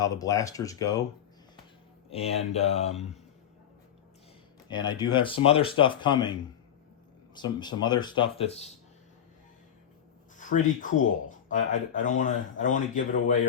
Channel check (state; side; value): quieter; right; 9.5 dB